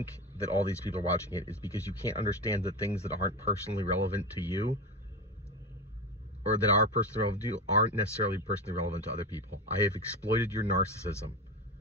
that all these people are watching it is because you can't understand that things that aren't personally relevant to you or that are personally relevant to you aren't necessarily personally relevant to other people. I have exploited your narcissism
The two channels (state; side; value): normal; both; correlation 0.21